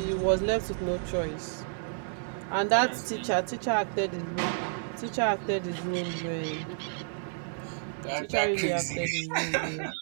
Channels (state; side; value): silent; left; digital silence